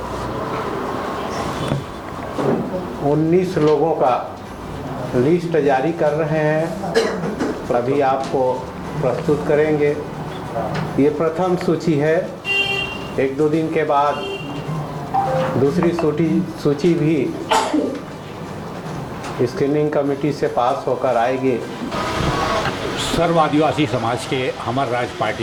19 लोगों का लिस्ट जारी कर रहे हैं, अभी आपको प्रस्तुत करेंगे। ये प्रथम सूची है। 1-2 दिन के बाद दूसरी सूची भी स्क्रीनिंग कमेटी से पास होकर आएगी। सर्व आदिवासी समाज के हमार राज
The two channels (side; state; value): both; identical; correlation 1.00